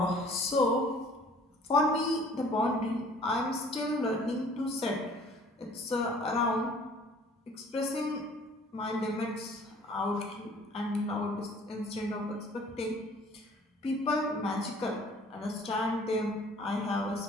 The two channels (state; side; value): normal; both; correlation 0.53